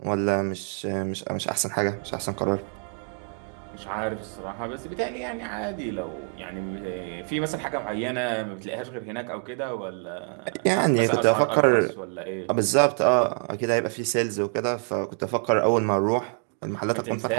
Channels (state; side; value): quieter; left; 39.1 dB